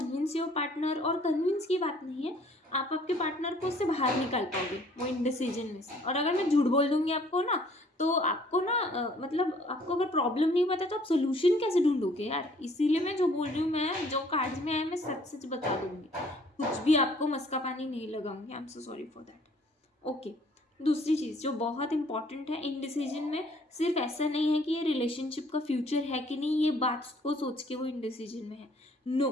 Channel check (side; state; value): both; normal; correlation 0.58